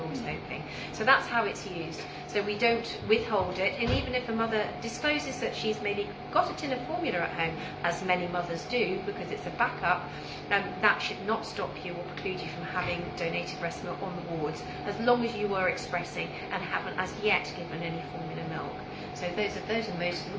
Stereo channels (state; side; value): identical; both; correlation 1.00